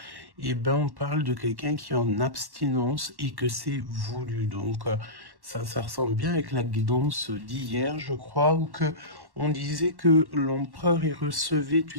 et ben on parle de quelqu'un qui est en abstinence et que c'est voulu. Donc ça ressemble bien avec la guidance d'hier, je crois, où que on disait que l'empereur il recevait,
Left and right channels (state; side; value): late; left; 1.1 ms